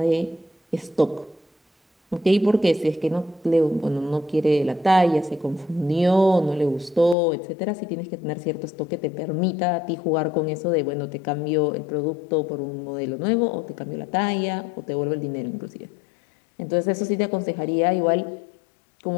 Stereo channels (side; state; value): right; drops out; at 7.2 s